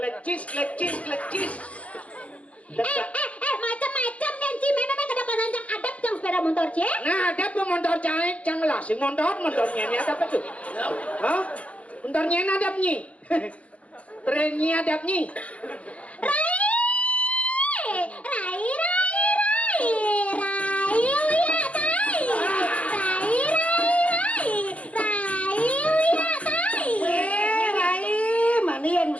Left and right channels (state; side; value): late; right; 0.065 ms